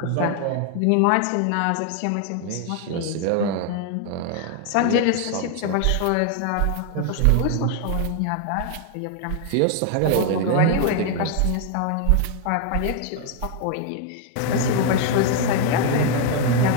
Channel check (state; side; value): different; both; correlation 0.00